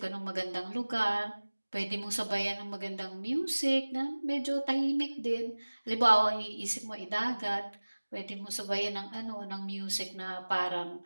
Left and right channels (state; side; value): inverted; both; correlation -1.00